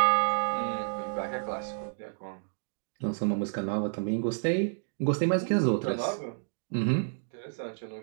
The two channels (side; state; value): left; silent; digital silence